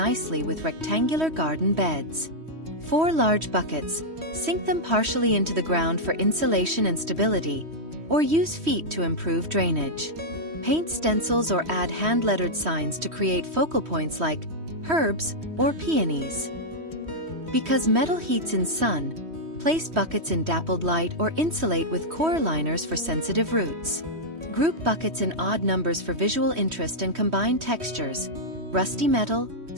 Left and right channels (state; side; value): late; left; 3.1 ms